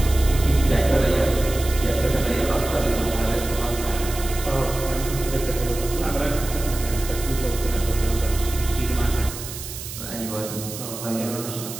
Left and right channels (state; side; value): noise; right; hiss, 10 dB below the sound